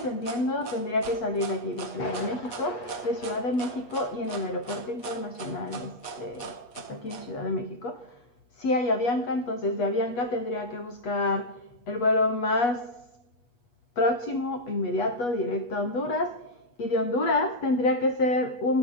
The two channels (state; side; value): late; right; 8.3 ms